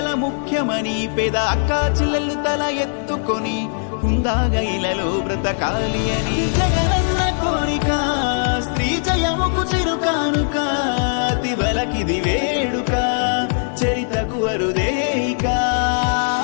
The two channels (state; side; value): silent; right; 56 dB below the other